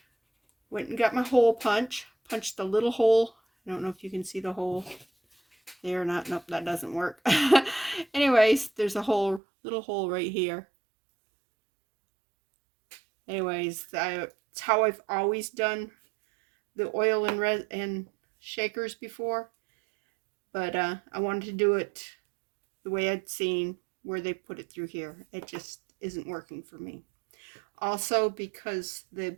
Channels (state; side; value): drops out; left; at 9.4 s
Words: Went and got my hole punch. Punched the little hole. I don't know if you can see the hole there or not. Nope, that doesn't work. Anyways, there's a little hole right here. Anyways, it's how I've always done the oil and shakers before. But I wanted to do it the way I'd seen where they put it through here. It just isn't working for me. Also, because the